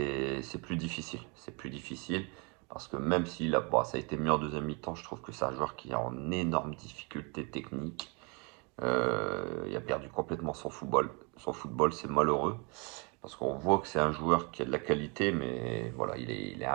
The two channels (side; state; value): left; quieter; 32.0 dB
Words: plus difficile. C'est plus difficile parce que même s'il a, bon, ça a été mieux en deuxième mi-temps, je trouve que c'est un joueur qui est en énorme difficulté technique. Il a perdu complètement son football. Son football, c'est malheureux parce qu'on voit que c'est un joueur qui a de la qualité, mais voilà, il est